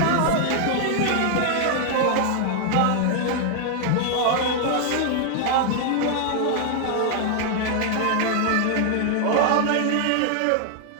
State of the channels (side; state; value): both; different; correlation 0.00